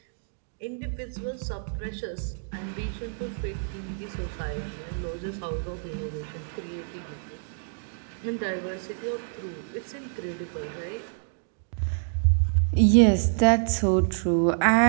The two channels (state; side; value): silent; left; digital silence